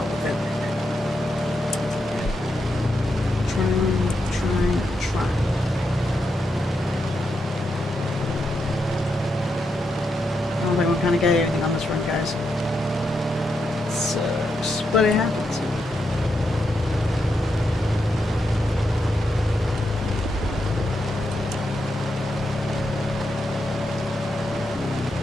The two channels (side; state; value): both; normal; correlation 0.84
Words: with it. Trying. I don't think we kind of got everything on this run, guys. It sucks, but it happens.